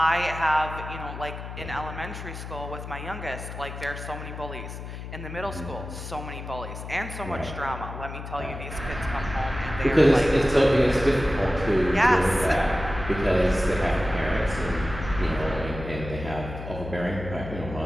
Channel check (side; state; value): left; noise; hum, 9 dB below the sound